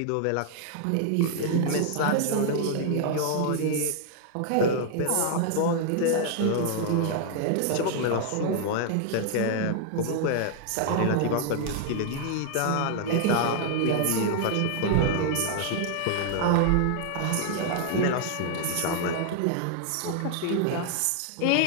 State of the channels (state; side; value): different; both; correlation 0.00